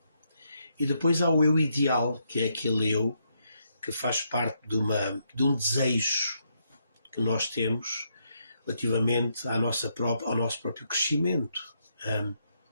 E depois há o eu ideal, que é aquele eu que faz parte de um desejo que nós temos relativamente ao nosso próprio crescimento.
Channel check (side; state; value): both; inverted; correlation -0.77